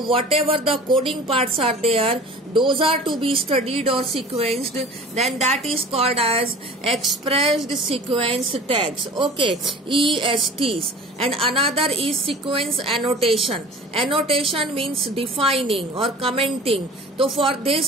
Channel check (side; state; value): both; normal; correlation 0.42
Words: the coding parts are there, those are to be studied or sequenced, then that is called as expressed sequence tags. Okay, ESTs. And another is sequence annotation. Annotation means defining or commenting. So for